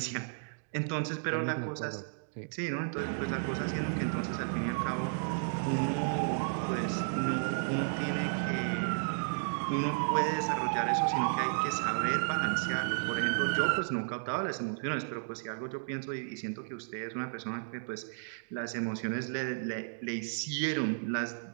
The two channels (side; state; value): left; silent; digital silence